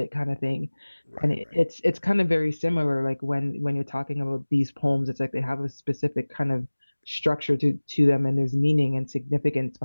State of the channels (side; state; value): both; inverted; correlation -1.00